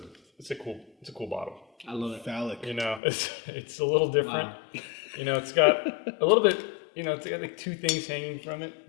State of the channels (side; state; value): right; drops out; at 3.0 s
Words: cool bottle. I love it. Phallic. You know, it's a little different. Wow. You know, it's got a little bit. You know, it's got like two things hanging from it.